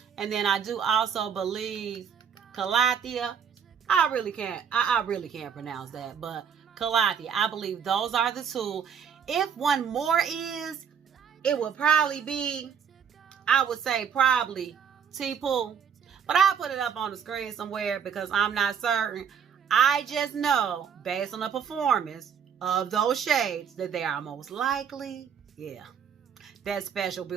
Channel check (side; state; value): left; quieter; 7.4 dB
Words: And then I do also believe Calathea. I really can't pronounce that, but Calathea, I believe those are the two. If one more is, it would probably be, I would say probably T-Pool. But I'll put it up on the screen somewhere because I'm not certain. I just know, based on the performance of those shades, that they are most likely, that special